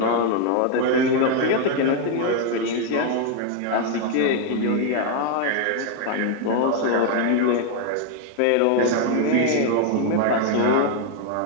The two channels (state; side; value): different; both; correlation 0.00